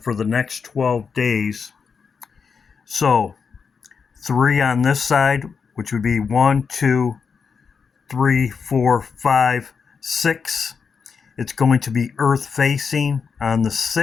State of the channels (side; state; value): right; quieter; 5.8 dB